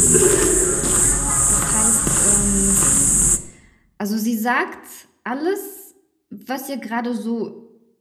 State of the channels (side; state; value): both; identical; correlation 1.00